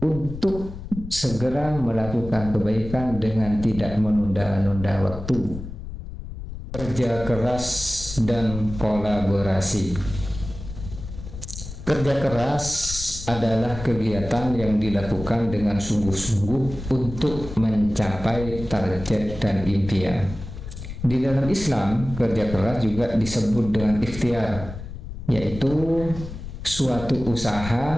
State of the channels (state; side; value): noise; left; rumble, 10 dB below the sound